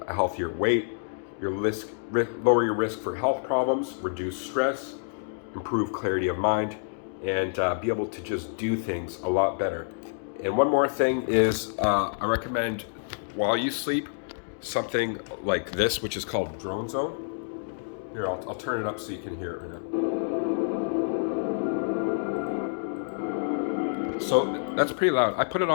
a healthier weight. Lower your risk for health problems, reduce stress, improve clarity of mind, and be able to just do things a lot better. And one more thing is I recommend, while you sleep, something like this, which is called Drone Zone. Here, I'll turn it up so you can hear it right now. So that's pretty loud. I put it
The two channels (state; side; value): silent; right; digital silence